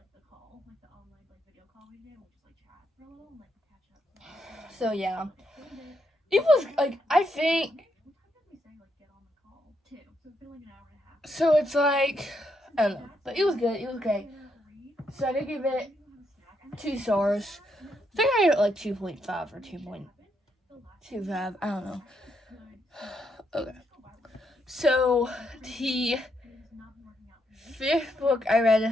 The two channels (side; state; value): both; normal; correlation 0.78